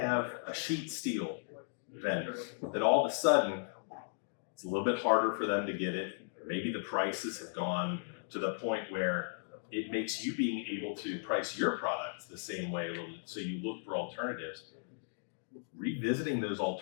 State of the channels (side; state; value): right; silent; digital silence